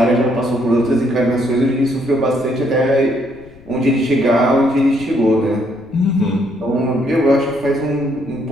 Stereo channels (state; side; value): noise; left; rumble, 24 dB below the sound